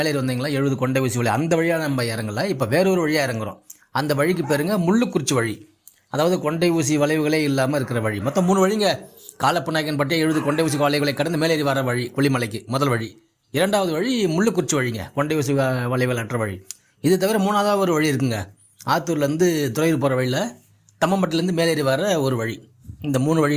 வந்தீங்களா 70 கொண்டை ஊசி வழி, அந்த வழியாக நம்ம இறங்கலை. இப்போ வேறொரு வழியாக இறங்குறோம். அந்த வழிக்கு பேருங்க முள்ளுக்குறிச்சி வழி, அதாவது கொண்டை ஊசி வளைவுகளே இல்லாமல் இருக்கிற வழி. மொத்தம் 3 வழிங்க. காலப்பநாயக்கன் பட்டியை 70 கொண்டை ஊசி வளைவுகளை கடந்து மேலேறி வர வழி கொல்லிமலைக்கு முதல் வழி. இரண்டாவது வழி முள்ளுக்குறிச்சி வழிங்க, கொண்டை ஊசி வளைவுகள் அற்ற வழி. இது தவிர மூணாவது ஒரு வழி இருக்குங்க, ஆத்தூர்லேருந்து துறையூர் போகிற வழியில் தம்மம்பட்டிலேருந்து மேலேறி வர ஒரு வழி. இந்த 3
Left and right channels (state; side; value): identical; both; correlation 1.00